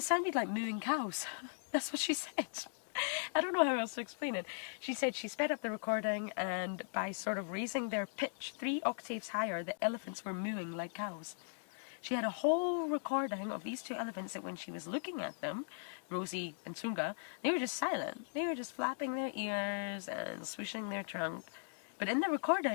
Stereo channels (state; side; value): silent; right; digital silence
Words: sounded like mooing cows. That's what she said. I don't know how else to explain it. She said she sped up the recording, and by sort of raising their pitch 3 octaves higher, the elephants were mooing like cows. She had a whole recording of these 2 elephants that when she was looking at them, Rosie and Tunga, they were just silent. They were just flapping their ears and swishing their trunk. But in the